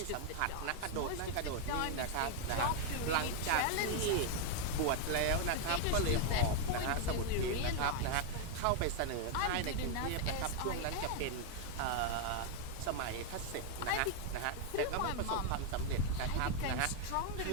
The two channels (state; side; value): different; both; correlation 0.00